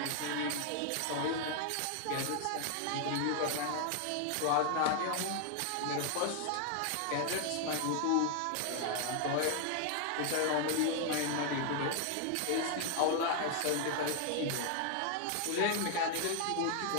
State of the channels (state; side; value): different; both; correlation 0.00